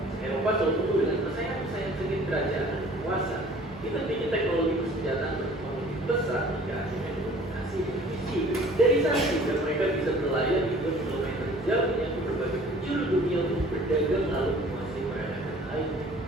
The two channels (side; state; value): both; normal; correlation 0.50